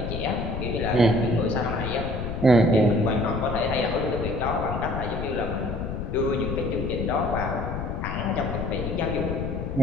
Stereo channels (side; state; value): left; noise; rumble, 4 dB below the sound